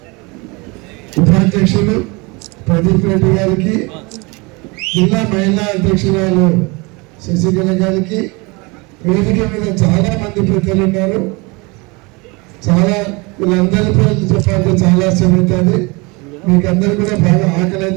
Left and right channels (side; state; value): left; quieter; 27.1 dB